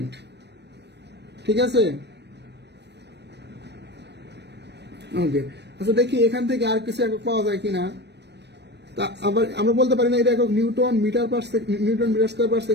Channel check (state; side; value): late; left; 0.50 ms